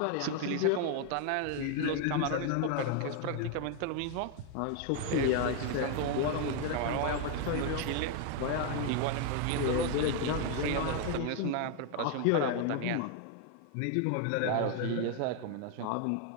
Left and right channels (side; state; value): both; different; correlation 0.00